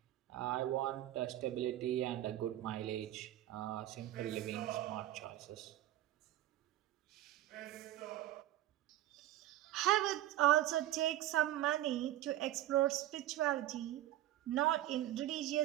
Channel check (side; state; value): left; quieter; 14.1 dB